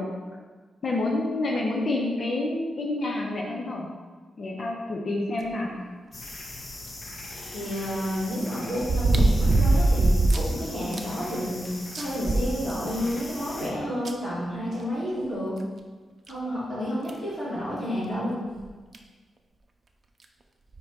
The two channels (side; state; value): both; normal; correlation 0.87